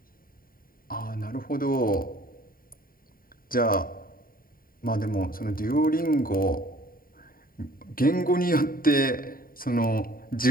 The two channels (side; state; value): right; late; 0.42 ms